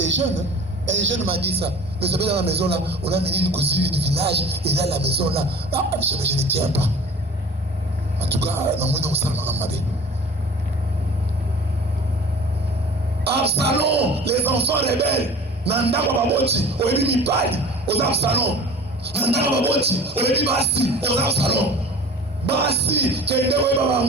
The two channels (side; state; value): both; normal; correlation 0.42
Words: jeunes. Un jeune m'a dit ça. Mais ça fait dans la maison là, on a mené une cousine du village, et là, la maison là, je ne tiens pas. En tout cas, non, moi, non, ça m'a dit. Absalom, les enfants rebelles, Nanda Baboti, Oebi Mipali, aux Absalom. Nanda Baboti, Oebi Basti, aux Absalom. Basti, Kendewe